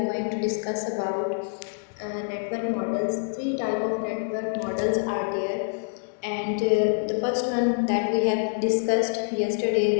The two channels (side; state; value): right; silent; digital silence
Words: going to discuss about network models. Three type of network models are there, and the first one that we have discussed yesterday,